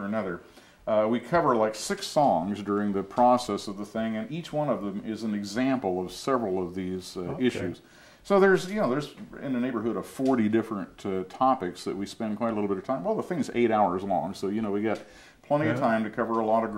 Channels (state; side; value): identical; both; correlation 1.00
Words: another. We cover like 6 songs during the process of the thing, and each one of them is an example of several of these issues. So there's in the neighborhood of 40 different topics that we spend quite a little bit of time. Well, the thing's 8 hours long, so you know, we got plenty of time to cover a lot of